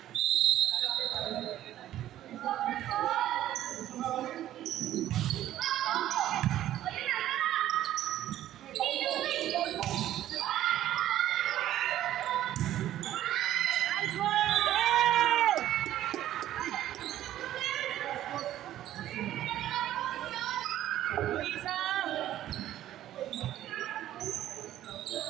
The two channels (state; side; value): quieter; left; 12.9 dB